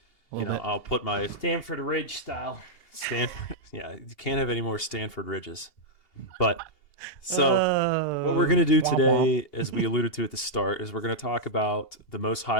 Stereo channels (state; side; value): late; right; 2.8 ms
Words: I'll put my Stanford Ridge style. Stanford. Yeah, you can't have any more Stanford Ridges. But so what we're going to do today, as we alluded to at the start, is we're going to talk about the most